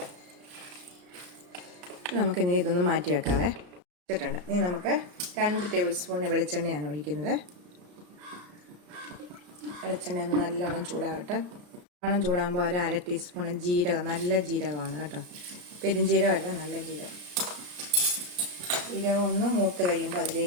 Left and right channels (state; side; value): late; left; 34 ms